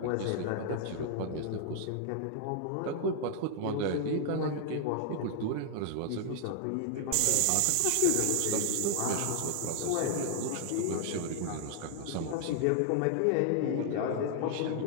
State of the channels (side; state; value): both; different; correlation 0.00